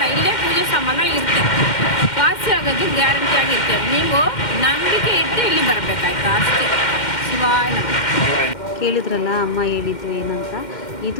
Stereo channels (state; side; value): late; right; 2.1 ms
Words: ಇಲ್ಲೇ ಪೂಜೆ ಸಾಮಾನು ಇರುತ್ತೆ, ವಾಸಿ ಆಗೋದು ಗ್ಯಾರಂಟಿ ಆಗಿರುತ್ತೆ. ನೀವು ನಂಬಿಕೆ ಇಟ್ಟು ಇಲ್ಲಿ ಬರಬೇಕಾಯ್ತು ಅಷ್ಟೇ. ಶಿವಾಯ ಕೇಳಿದ್ರಲ್ಲ ಅಮ್ಮ ಹೇಳಿದ್ದು ಏನಂತ.